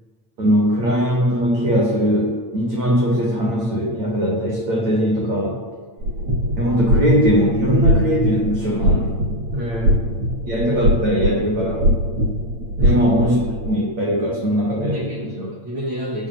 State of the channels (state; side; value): late; left; 8.8 ms